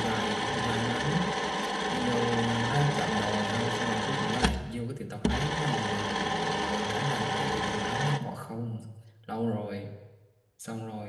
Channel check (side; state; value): both; identical; correlation 1.00